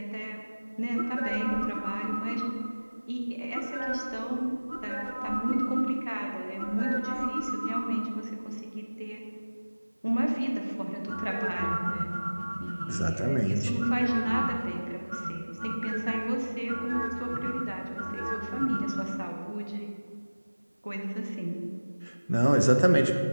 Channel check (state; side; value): inverted; both; correlation -1.00